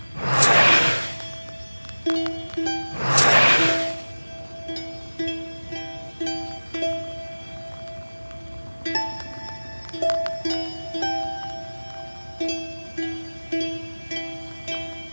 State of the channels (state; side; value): inverted; both; correlation -1.00